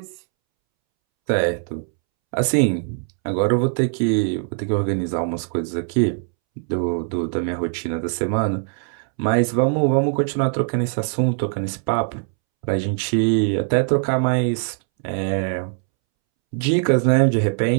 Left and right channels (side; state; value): left; silent; 65 dB below the other